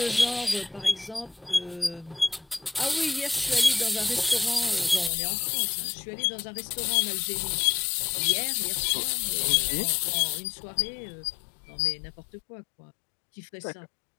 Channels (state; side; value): drops out; right; at 5.1 s